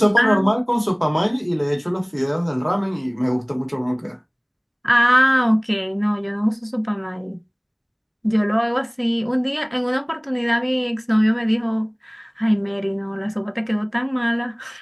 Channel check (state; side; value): identical; both; correlation 1.00